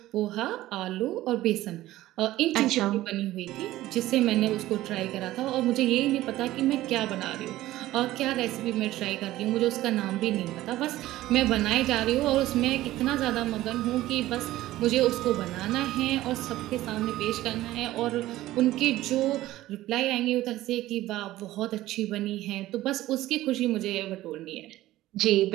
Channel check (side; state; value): left; quieter; 15.7 dB